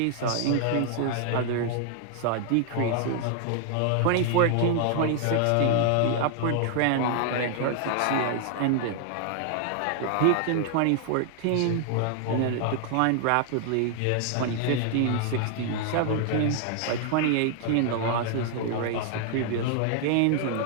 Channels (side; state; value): both; different; correlation 0.00